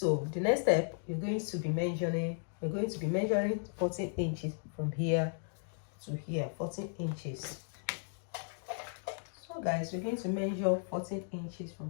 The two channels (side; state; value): right; silent; digital silence